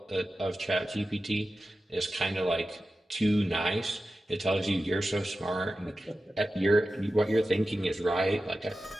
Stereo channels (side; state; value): both; normal; correlation 0.93